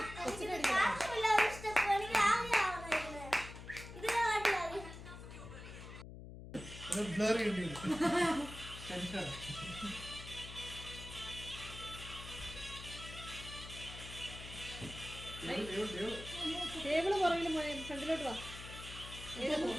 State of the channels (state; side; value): noise; left; hum, 12 dB below the sound